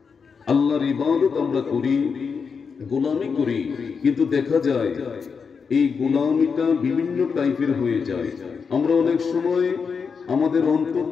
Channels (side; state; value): right; quieter; 5.7 dB